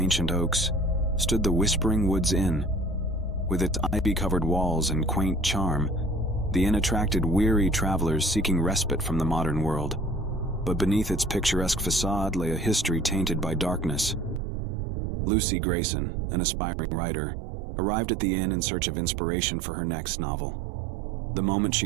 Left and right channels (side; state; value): left; drops out; at 14.4 s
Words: oaks, stood the Whispering Woods Inn. With its ivy-covered walls and quaint charm, the inn attracted weary travelers seeking respite from the modern world. But beneath its picturesque facade lay a history tainted by darkness. Lucy Grayson, an aspiring writer, arrived at the inn in search of inspiration for her next novel. The moment she